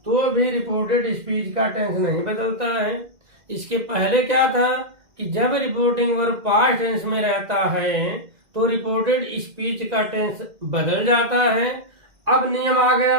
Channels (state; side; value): late; left; 1.9 ms